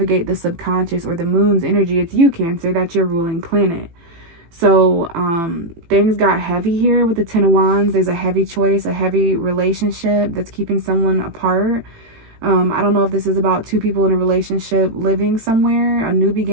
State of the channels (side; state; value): left; late; 18 ms